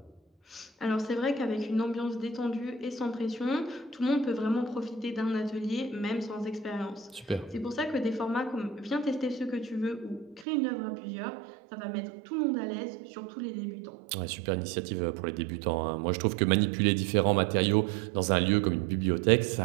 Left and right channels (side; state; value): left; drops out; at 10.5 s